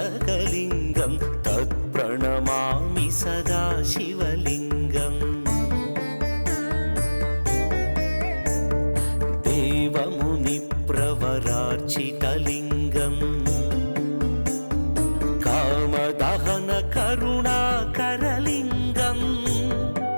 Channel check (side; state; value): both; inverted; correlation -1.00